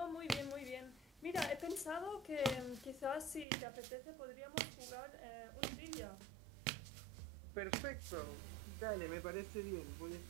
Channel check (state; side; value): drops out; left; at 3.5 s